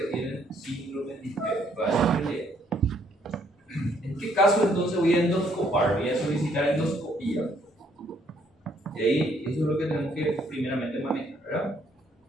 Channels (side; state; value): both; normal; correlation 0.68